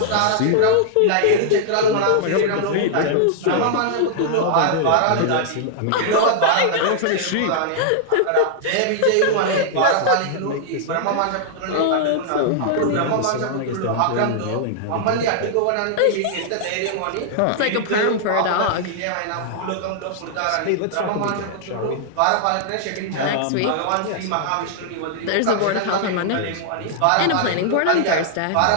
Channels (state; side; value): different; both; correlation -0.01